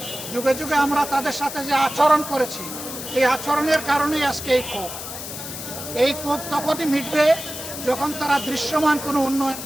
যুগে যুগে আমরা তাদের সাথে যে আচরণ করেছি, এই আচরণের কারণেই আজকে এই ক্ষোভ তখনই মিটবে যখন তারা দৃশ্যমান কোনো উন্নয়ন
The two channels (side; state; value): left; noise; hiss, 9 dB below the sound